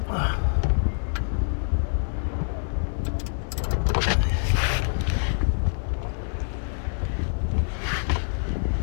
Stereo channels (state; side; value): silent; right; digital silence